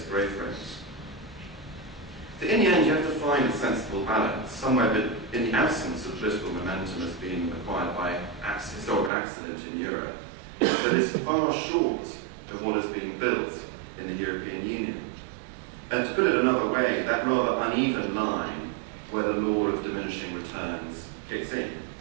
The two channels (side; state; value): left; drops out; at 9.1 s